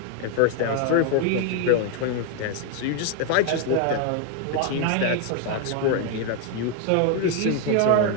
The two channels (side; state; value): both; different; correlation 0.01